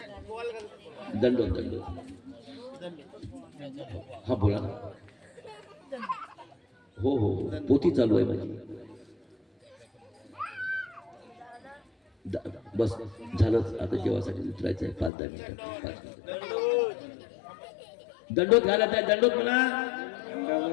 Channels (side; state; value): right; drops out; at 15.1 s